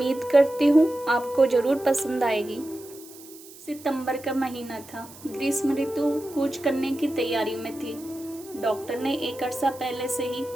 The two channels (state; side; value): noise; right; hiss, 19 dB below the sound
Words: करती हूँ आपको ज़रूर पसंद आएगी। सितंबर का महीना था। ग्रीष्म ऋतु कूच करने की तैयारी में थी। डॉक्टर ने एक अरसा पहले से ही